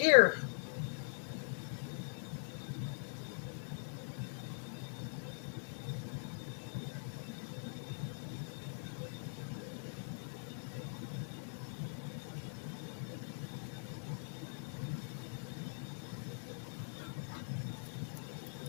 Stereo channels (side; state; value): right; silent; digital silence